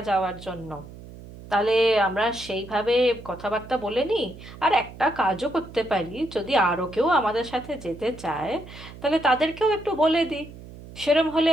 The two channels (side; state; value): right; noise; hum, 16 dB below the sound